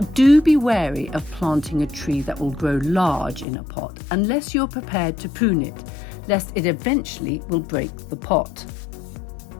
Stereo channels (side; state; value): right; drops out; at 3.5 s